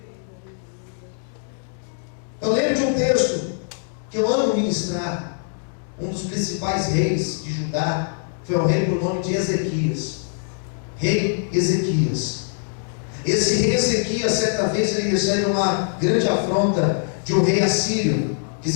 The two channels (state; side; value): silent; right; digital silence